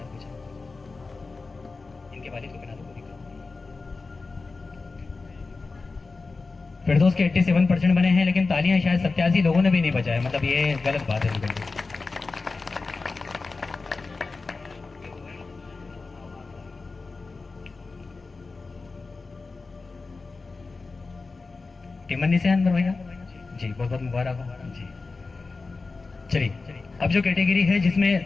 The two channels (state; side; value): quieter; right; 3.9 dB